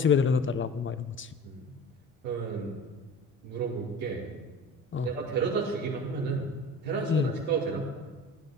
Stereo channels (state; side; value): normal; both; correlation 0.38